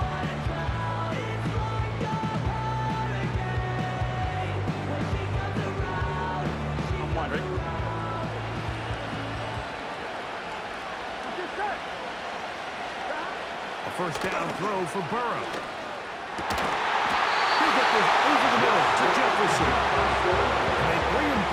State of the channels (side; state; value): both; identical; correlation 1.00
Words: I'm wondering. A first down throw for Burrow. He'll get this over the middle to Jefferson. And they bring him